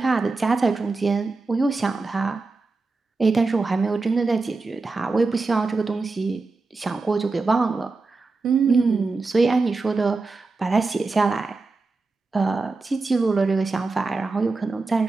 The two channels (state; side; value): quieter; left; 3.8 dB